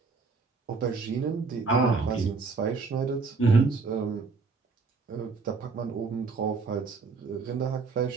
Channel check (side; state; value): left; quieter; 4.4 dB